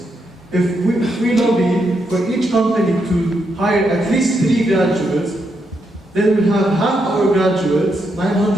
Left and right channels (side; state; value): both; normal; correlation 0.80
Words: If we lobby for each company to hire at least 3 graduates, then we'll have half our graduates,